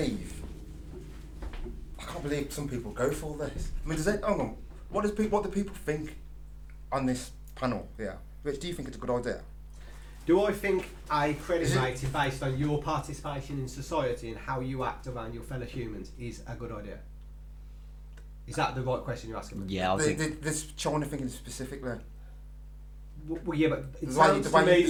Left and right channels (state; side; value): identical; both; correlation 1.00